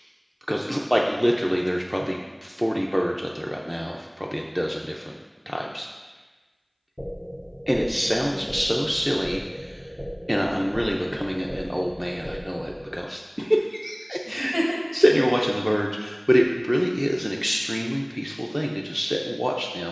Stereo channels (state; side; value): identical; both; correlation 1.00